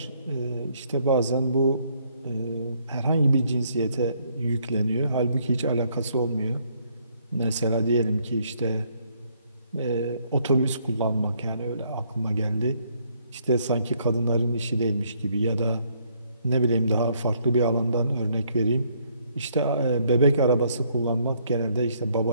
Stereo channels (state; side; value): inverted; both; correlation -0.68